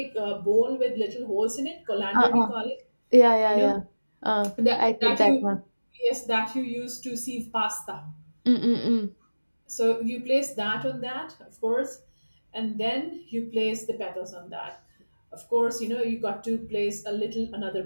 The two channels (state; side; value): inverted; both; correlation -1.00